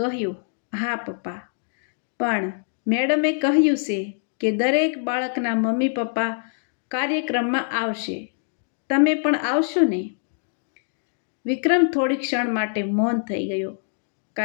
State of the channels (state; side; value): silent; right; digital silence